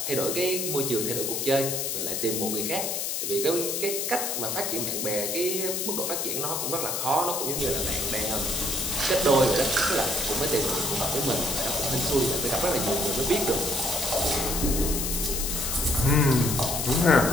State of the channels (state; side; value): noise; left; hiss, 1 dB below the sound